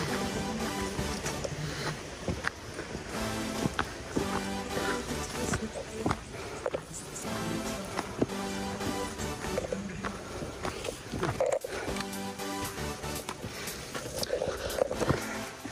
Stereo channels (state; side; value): identical; both; correlation 1.00